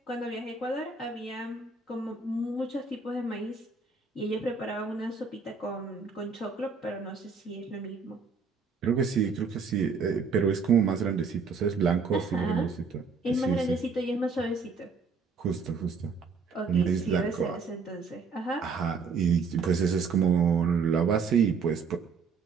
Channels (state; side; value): quieter; left; 5.0 dB